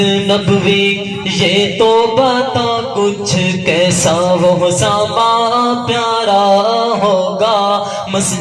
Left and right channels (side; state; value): both; identical; correlation 1.00